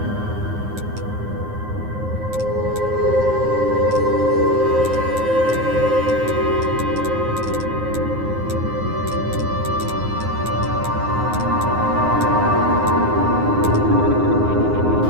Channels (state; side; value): late; left; 9.6 ms